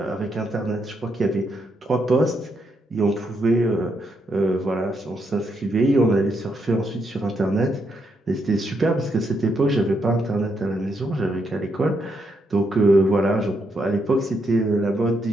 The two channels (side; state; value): both; normal; correlation 0.79